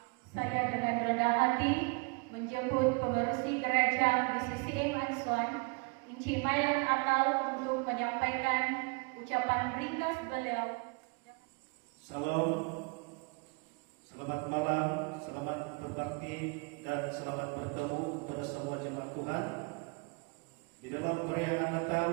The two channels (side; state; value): left; quieter; 31.3 dB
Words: Saya dengan rendah hati menjemput pengerusi gereja BCCI Ansuan, Inci Mailan Atal, untuk menyampaikan ucapan ringkas beliau. Salam, selamat malam, selamat berbakti, dan selamat bertemu kepada semua jemaat Tuhan.